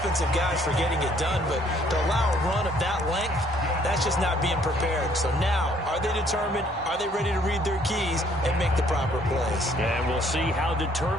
guys for getting it done, but to allow a run of that length, that's just not being prepared. So now, are they determined? Are they ready to read their keys and make the proper plays? And we'll see how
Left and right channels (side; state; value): both; normal; correlation 0.63